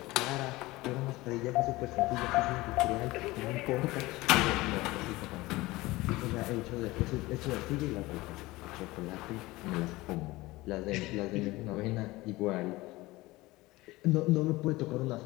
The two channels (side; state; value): right; quieter; 20.0 dB